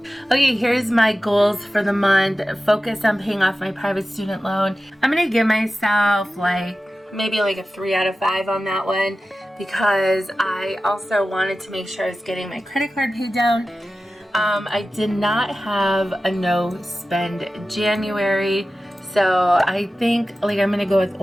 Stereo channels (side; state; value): both; normal; correlation 0.94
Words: Okay, here's my goals for the month. Focus on paying off my private student loan. I'm going to give myself maybe a 3 out of 5 on that one, because I also wanted to make sure I was getting my credit card paid down. I did not have a no spend January, So I think like I'm gonna go with